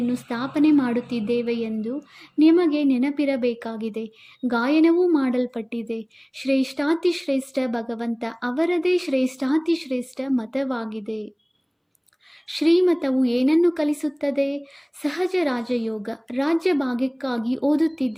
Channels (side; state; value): both; identical; correlation 1.00